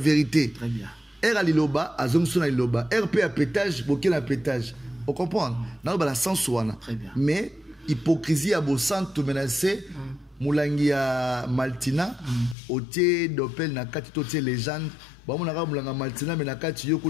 Très bien. Er ali loba, azam sona loba. RP à pétage, boké à pétage. On comprend. Dans la sens wana. Mais hypocrisie à beau centre menacé. Moulangi ya Maltina, otie dopel na kati totie légende. Ba mo naka mulanga Maltina mais na kati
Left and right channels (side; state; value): right; drops out; at 12.6 s